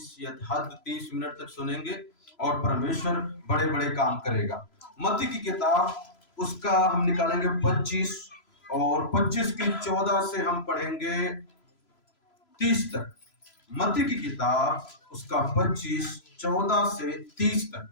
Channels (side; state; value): right; late; 3.0 ms